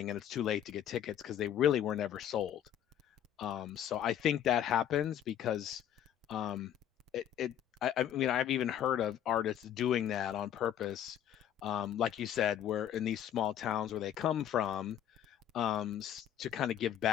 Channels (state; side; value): quieter; right; 10.3 dB